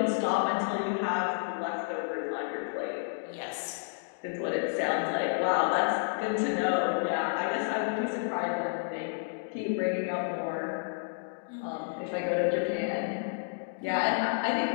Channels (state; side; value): silent; right; digital silence